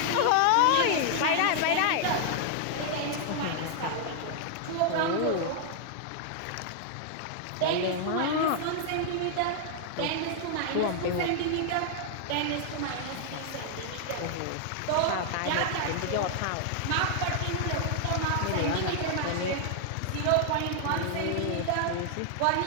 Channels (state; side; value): different; both; correlation -0.01